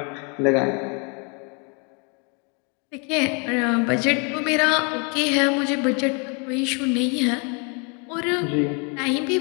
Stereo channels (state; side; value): quieter; right; 34.6 dB